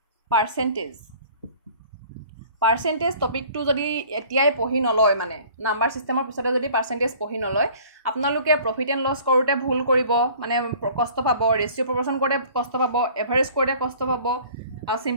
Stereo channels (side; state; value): both; inverted; correlation -0.50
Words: পাৰ্সেন্টেজ টপিকটো যদি এতিয়াই পঢ়ি নলয় মানে নাম্বাৰ সিস্টেমৰ পিছতে যদি পাৰ্সেন্টেজ পঢ়ি নলয় আপোনালোকে প্ৰফিট এণ্ড লছ কৰোতে ভুল কৰিব মানে কষ্ট পাব ৰেশিও প্ৰপৰচন কৰোতে কষ্ট পাব এভাৰেজ কৰোতে কষ্ট পাব আৰু